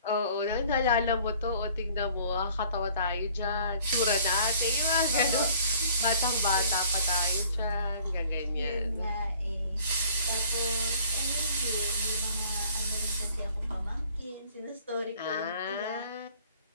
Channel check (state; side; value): inverted; both; correlation -0.53